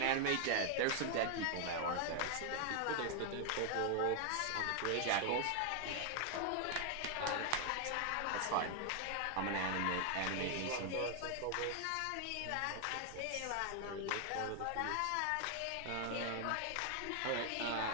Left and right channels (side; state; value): both; different; correlation 0.00